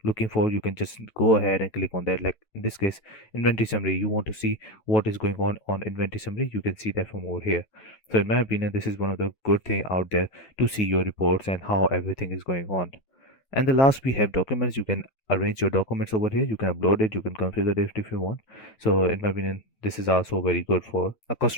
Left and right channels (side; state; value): right; late; 9.2 ms